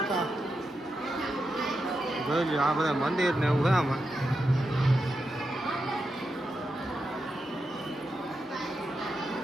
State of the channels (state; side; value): normal; both; correlation 0.87